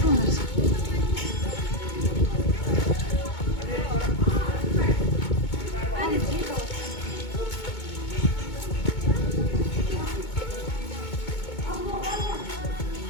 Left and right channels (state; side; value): late; right; 2.2 ms